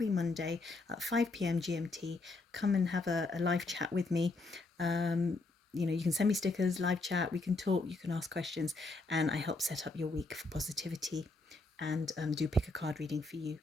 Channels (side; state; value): right; quieter; 3.3 dB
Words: Monday at 5 p.m. GMT, come and have a live chat with me. You know, you can send me stickers, live chat, we can talk, you can ask questions, and I help set up your week for positivity and do pick a card reading for you